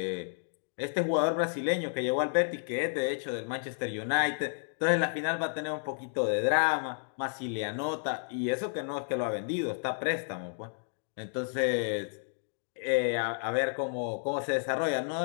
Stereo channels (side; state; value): right; silent; digital silence